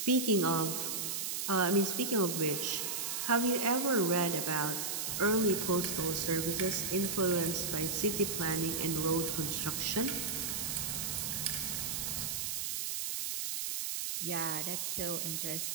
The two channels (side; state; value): right; noise; hiss, 2 dB below the sound